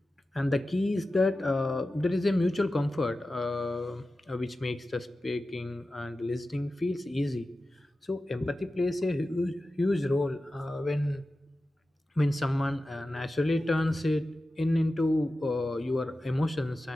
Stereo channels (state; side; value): normal; both; correlation 0.94